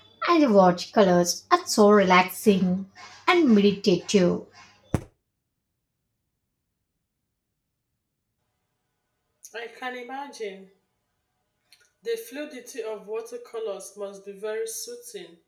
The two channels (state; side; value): identical; both; correlation 1.00